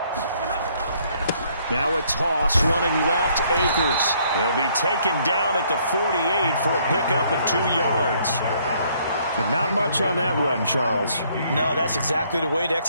Now a toss running left, Akers. He'll be taken down at the 48 for a pickup of 2 yards. But not much on that run, Charles. No, that's exactly the way to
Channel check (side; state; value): both; inverted; correlation -0.66